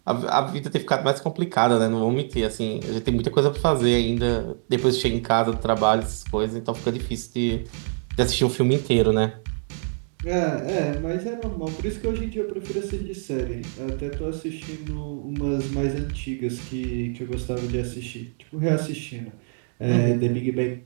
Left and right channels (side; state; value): left; silent; 62 dB below the other